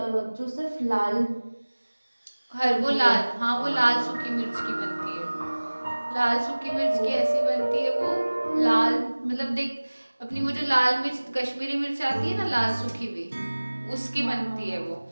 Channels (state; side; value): inverted; both; correlation -1.00